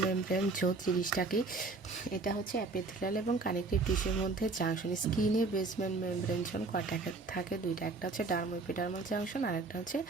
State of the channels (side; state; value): left; quieter; 3.7 dB